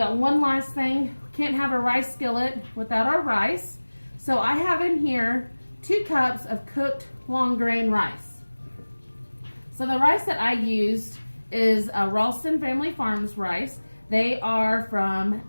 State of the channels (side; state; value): both; inverted; correlation -1.00